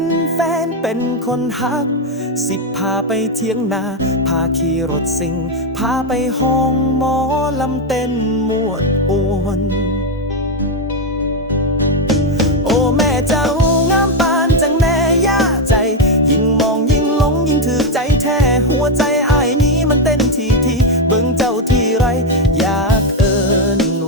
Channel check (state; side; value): normal; both; correlation 0.05